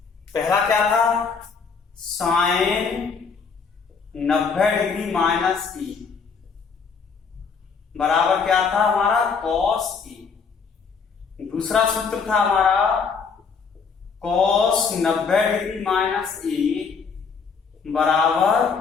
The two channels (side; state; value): right; quieter; 5.5 dB